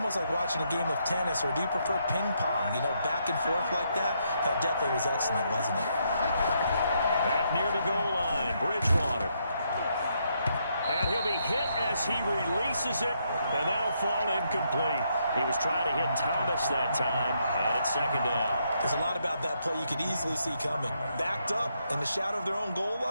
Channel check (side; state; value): both; inverted; correlation -0.76